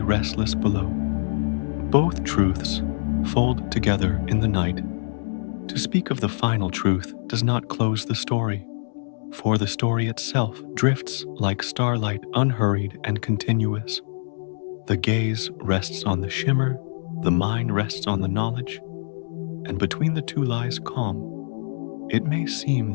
restless below. Both truths fold together in the night. To speak of the final truth does not close the story, for the story itself drifts like starlight, unhurried and continuous. The gaze rests on the shimmer, the mind rests on the knowledge, and between the two lies calm. It may seem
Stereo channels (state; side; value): silent; right; digital silence